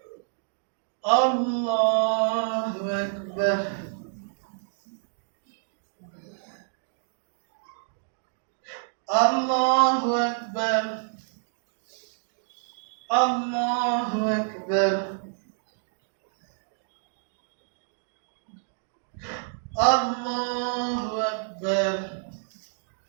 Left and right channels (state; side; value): silent; left; digital silence